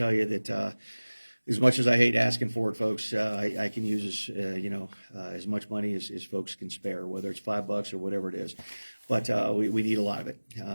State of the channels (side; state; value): both; inverted; correlation -1.00